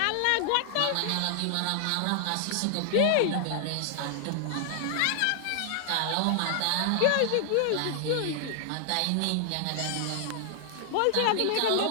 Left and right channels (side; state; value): both; different; correlation 0.00